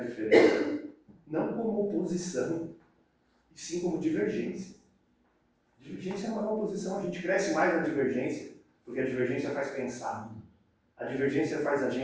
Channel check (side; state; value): both; identical; correlation 1.00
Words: Não como oposição, e sim como divergência. Divergência não é uma oposição, a gente cresce mais na divergência, porque a divergência faz pensar, a divergência faz a